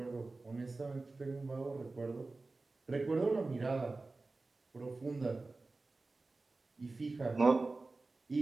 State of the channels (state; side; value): quieter; left; 3.5 dB